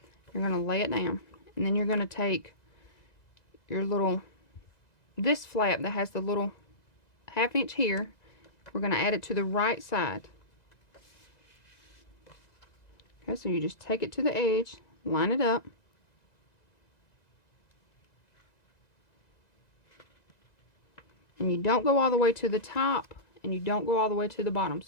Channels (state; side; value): late; right; 1.9 ms